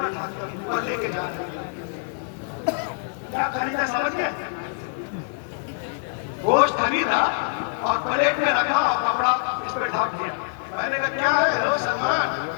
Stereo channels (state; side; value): silent; right; 61 dB below the other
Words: ढाके और लेके जाते। क्या खरीदा समझ गए? गोश्त खरीदा और प्लेट में रखा और कपड़ा इस पे ढक दिया। मैंने कहा क्या है रो सलमान?